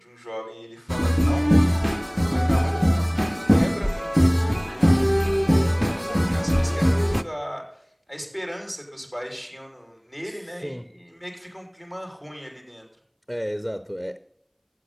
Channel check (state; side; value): identical; both; correlation 1.00